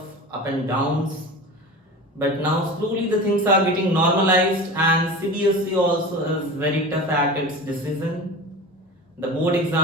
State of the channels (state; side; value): normal; both; correlation 0.32